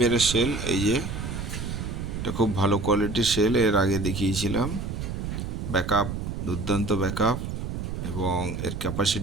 সেল। এই যে এটা খুব ভালো কোয়ালিটির সেল, এর আগে দেখিয়েছিলাম। ব্যাকআপ, দুর্দান্ত ব্যাকআপ, এবং এর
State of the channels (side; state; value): right; noise; rumble, 5 dB below the sound